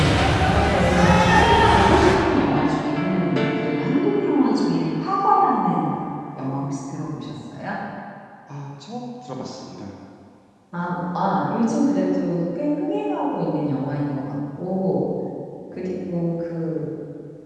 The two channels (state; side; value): identical; both; correlation 1.00